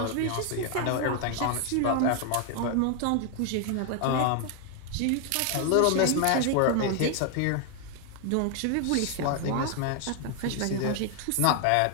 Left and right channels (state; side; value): different; both; correlation 0.00